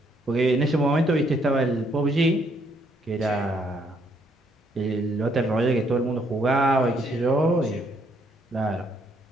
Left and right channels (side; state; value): both; normal; correlation 0.70